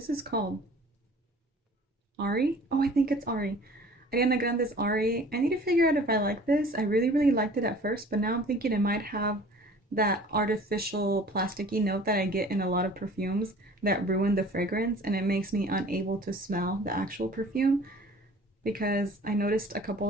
this called? Ari? Oh, I think it's Ari. Ariana Grande's Ari. I need to figure out if I like this. I really, really liked it at first, but now I'm thinking it might have that artificial plasticky note that I get in a lot of perfumes that ruin the fragrance, and it makes me unable to smell the actual perfume because I noticed a couple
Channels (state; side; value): normal; both; correlation 0.48